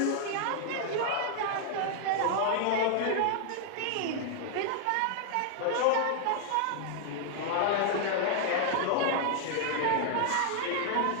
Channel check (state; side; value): different; both; correlation 0.00